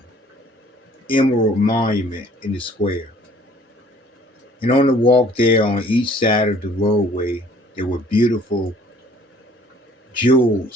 emerald monument in the square. And on the walk there, on each side of the roadway, there were beautiful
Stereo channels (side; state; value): both; normal; correlation 0.56